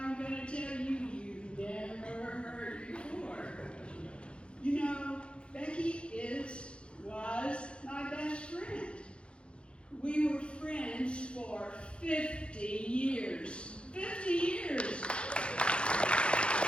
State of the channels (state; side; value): late; right; 0.057 ms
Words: going to tell you you've never heard before. You know, Becky was my best friend. We were friends for 50 years. 50 years!